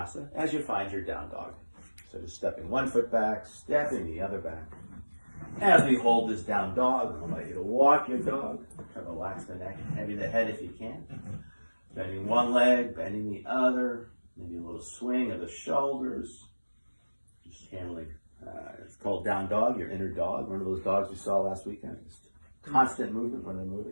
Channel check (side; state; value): both; inverted; correlation -1.00